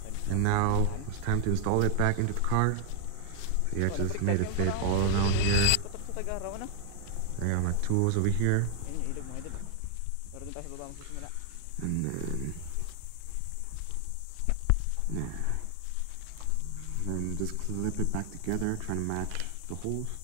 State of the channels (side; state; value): both; different; correlation 0.00